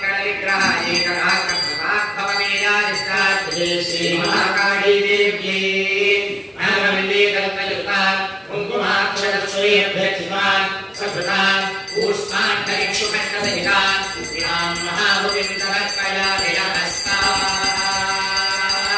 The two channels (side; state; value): both; identical; correlation 1.00